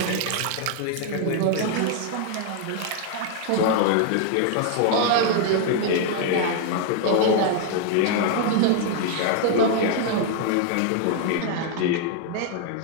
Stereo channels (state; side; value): different; both; correlation 0.00